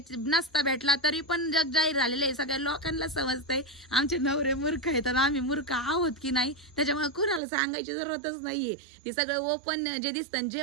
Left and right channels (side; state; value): left; drops out; at 7.4 s